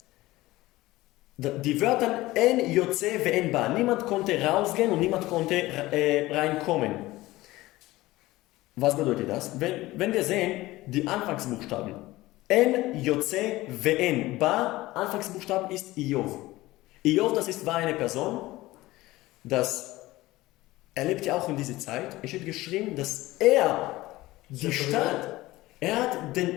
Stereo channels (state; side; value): quieter; right; 18.3 dB